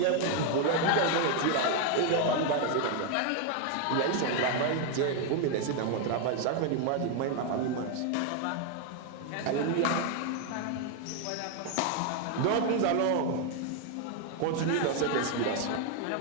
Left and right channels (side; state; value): both; different; correlation 0.01